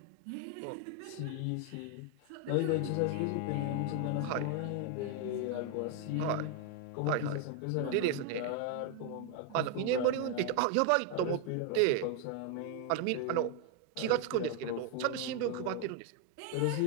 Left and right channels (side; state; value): both; different; correlation 0.01